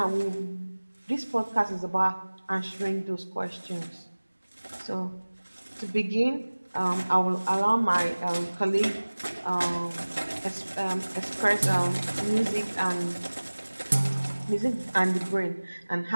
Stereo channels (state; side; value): inverted; both; correlation -1.00